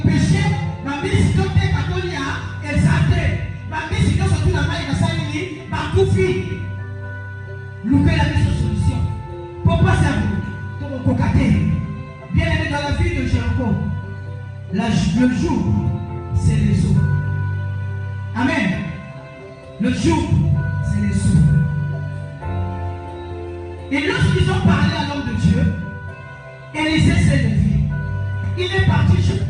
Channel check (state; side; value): identical; both; correlation 1.00